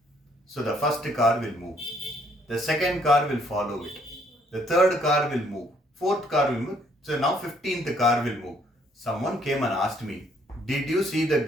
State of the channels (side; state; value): both; normal; correlation 0.66